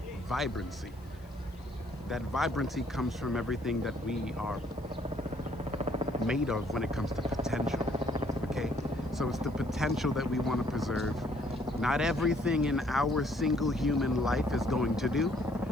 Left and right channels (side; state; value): left; noise; hiss, 29 dB below the sound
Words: vibrancy. That vibrancy comes from everything that we are made of when it comes to potential, okay? So it's the potential that we want to preserve. Not everything in our single human life is going to do.